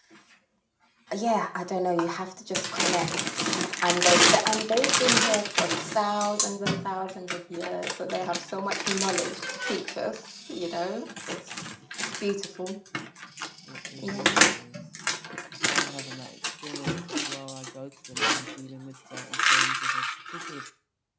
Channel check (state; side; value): identical; both; correlation 1.00